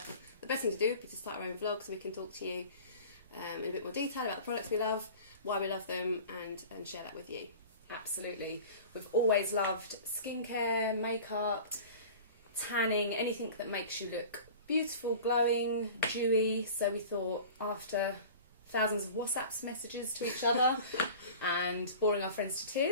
best thing to do would be to start our own vlog so we can talk to you in a bit more detail about the products we love, why we love them, and share that with you. Absolutely. We've always loved skincare, makeup, tanning, anything that makes you look beautiful, glowing, dewy. So we thought, after thousands of WhatsApp messages to each other and boring our friends to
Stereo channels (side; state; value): both; inverted; correlation -0.40